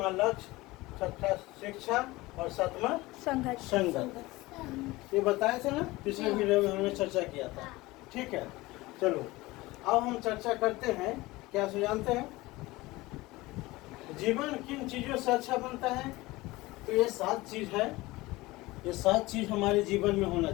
लक्ष्य, छठा शिक्षा और सातवां संगत। ये बताए थे ना, पिछले वीडियो में हमने चर्चा किया था। ठीक है, चलो अब हम चर्चा करते हैं। क्या जानते हैं जीवन किन चीजों से अच्छा बनता है। तो ये 7 चीज है, ये 7 चीज हमारे जीवन में होना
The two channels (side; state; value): right; quieter; 20.3 dB